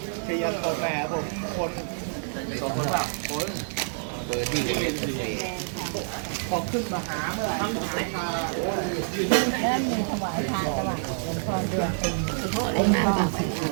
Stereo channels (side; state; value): left; silent; digital silence